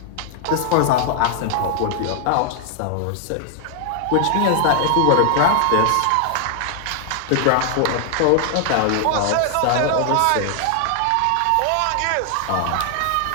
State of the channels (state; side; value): different; both; correlation 0.00